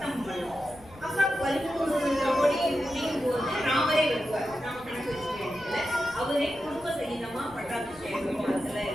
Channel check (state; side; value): noise; left; rumble, 23 dB below the sound